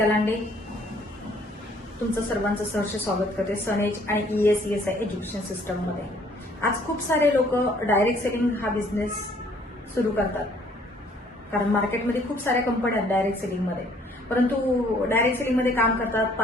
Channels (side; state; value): both; normal; correlation 0.61